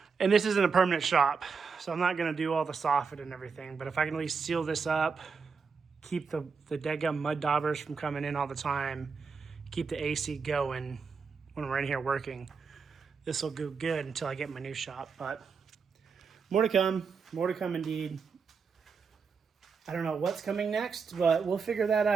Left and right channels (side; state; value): left; quieter; 5.4 dB